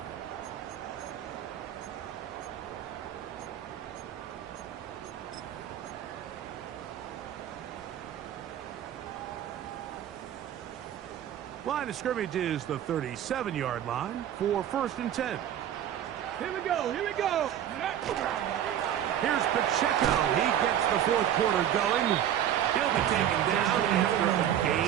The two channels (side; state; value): left; quieter; 10.6 dB